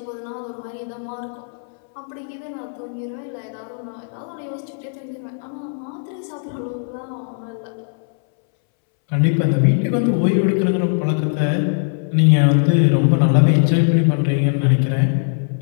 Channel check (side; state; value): right; silent; 66 dB below the other